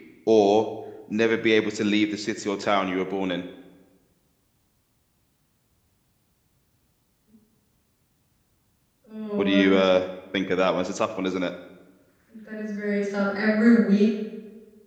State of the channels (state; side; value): identical; both; correlation 1.00